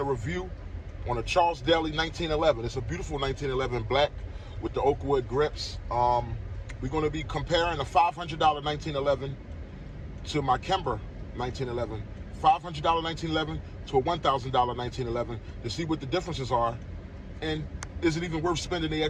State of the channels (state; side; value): identical; both; correlation 1.00